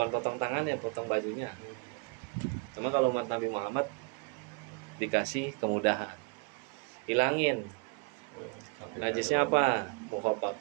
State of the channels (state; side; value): quieter; left; 34.8 dB